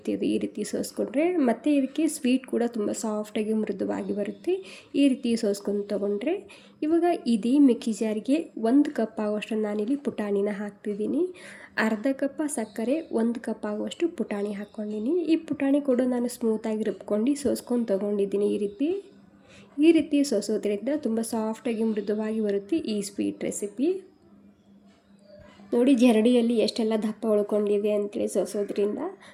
ಇದು ಈ ರೀತಿ ಸೋಸ್ಕೊಂಡ್ರೆ ಮತ್ತು ಇದಕ್ಕೆ ಸ್ವೀಟ್ ಕೂಡ ತುಂಬ ಸಾಫ್ಟಾಗಿ ಮೃದುವಾಗಿ ಬರುತ್ತೆ. ಈ ರೀತಿ ಸೋಸ್ಕೊಂಡು ತೊಗೊಂಡ್ರೆ ಇವಾಗ ಇದೇ ಮಿಕ್ಸಿ ಜಾರಿಗೆ 1 ಕಪ್ ಆಗುವಷ್ಟು ನಾನಿಲ್ಲಿ ಪುಟಾಣಿನ ಹಾಕ್ತಿದ್ದೀನಿ. ಅರ್ಧ ಕಪ್ ಸಕ್ಕರೆ, 1 ಕಪ್ ಆಗುವಷ್ಟು ಪುಟಾಣಿ ಹಾಕ್ಕೊಂಡಿನಿ. ಈ ಪುಟಾಣಿ ಕೂಡ ನಾನು ಸ್ಮೂತಾಗಿ ರುಬ್ಕೊಂಡು ಸೋಸ್ಕೊಂಡು ತೊಗೊಂಡಿದ್ದೀನಿ. ಈ ರೀತಿ ಸೋಸೋದ್ರಿಂದ ತುಂಬ ಸಾಫ್ಟಾಗಿ ಮೃದುವಾಗಿ ಬರುತ್ತೆ ಈ ಸ್ವೀಟ್ ರೆಸಿಪಿ. ನೋಡಿ ಜರಡಿಯಲ್ಲಿ ಎಷ್ಟೆಲ್ಲ ದಪ್ಪ ಉಳ್ಕೊಂಡಿದೆ ಅಂತೇಳಿ ಸೋಸೋದ್ರಿಂದ.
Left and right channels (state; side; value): identical; both; correlation 1.00